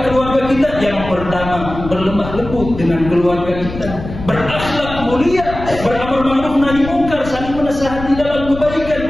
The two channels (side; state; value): left; noise; rumble, 10 dB below the sound